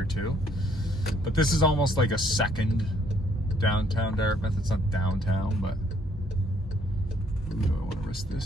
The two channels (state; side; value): normal; both; correlation 0.66